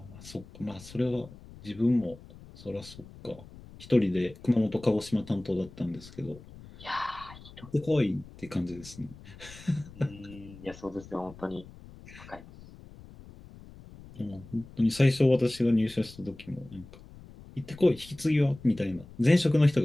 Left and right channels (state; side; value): noise; left; rumble, 19 dB below the sound